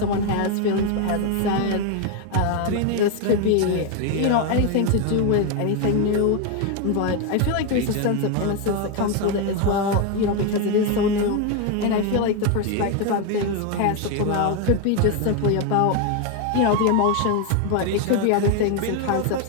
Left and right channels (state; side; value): different; both; correlation 0.01